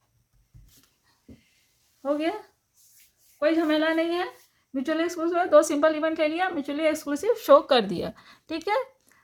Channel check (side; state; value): both; identical; correlation 1.00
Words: हो गया, कोई झमेला नहीं है। म्यूचुअली एक्सक्लूसिव है, 2 सिंपल इवेंट ले लिया, म्यूचुअली एक्सक्लूसिव शो कर दिया। ठीक है,